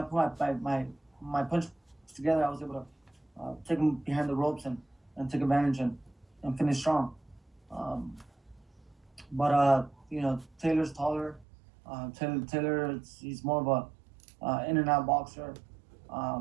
my punch together, I was able to take him behind the ropes and take advantage and finish strong. But Taylor's taller. Taylor, he's more of a in and out boxer.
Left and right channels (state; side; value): drops out; left; at 11.5 s